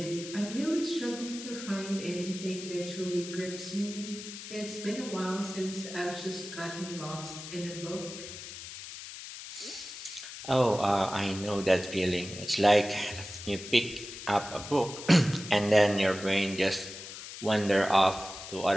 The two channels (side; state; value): left; noise; hiss, 11 dB below the sound